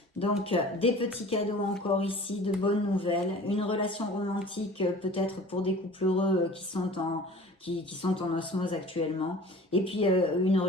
Donc, des petits cadeaux encore ici, de bonnes nouvelles, une relation romantique peut-être pour des couples heureux qui sont en osmose actuellement, et puis une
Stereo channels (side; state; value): both; normal; correlation 0.44